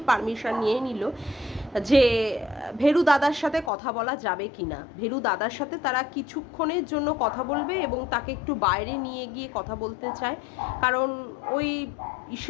পারমিশন নিয়ে নিল যে ভেরু দাদার সাথে কথা বলা যাবে কি না। ভেরু দাদার সাথে তারা কিছুক্ষণের জন্য কথা বলবে এবং তাকে একটু বাইরে নিয়ে গিয়ে কথা বলতে চায়, কারণ ওই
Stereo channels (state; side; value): drops out; right; at 3.7 s